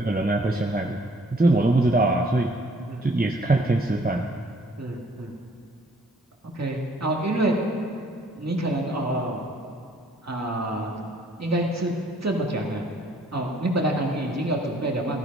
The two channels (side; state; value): both; normal; correlation 0.60